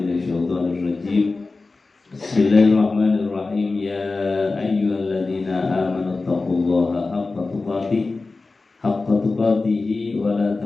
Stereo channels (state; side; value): quieter; right; 3.7 dB